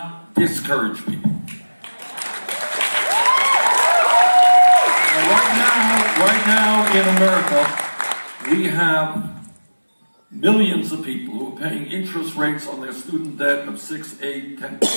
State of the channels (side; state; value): both; inverted; correlation -1.00